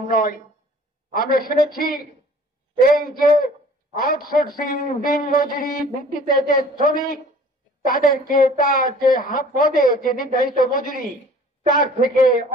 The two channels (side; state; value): both; normal; correlation 0.50